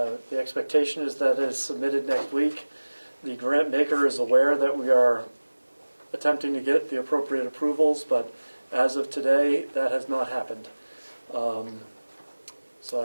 expectation is that it is submitted next week. The grant maker is aware that we are attempting to get the appropriate approvals, but as of today, that has not happened.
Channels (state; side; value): inverted; both; correlation -1.00